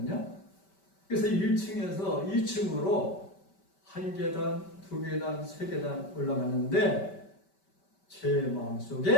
그래서 1층에서 2층으로 1계단, 2계단, 3계단 올라가는데 제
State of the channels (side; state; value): right; late; 5.2 ms